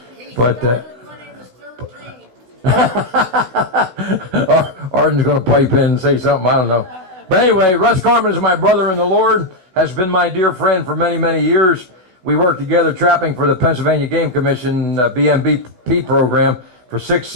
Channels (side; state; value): left; late; 16 ms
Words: But Arden's going to pipe in and say something. I don't know. But anyway, Russ Carman is my brother in the Lord, has been my dear friend for many, many years. We worked together trapping for the Pennsylvania Game Commission BMBP program for 6